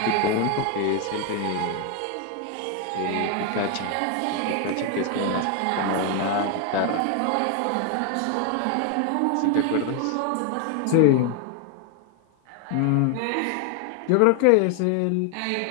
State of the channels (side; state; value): both; different; correlation 0.01